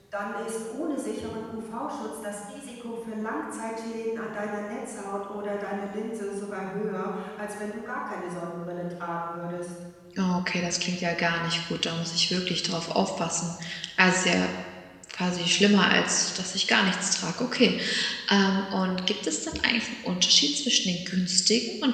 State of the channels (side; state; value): both; identical; correlation 1.00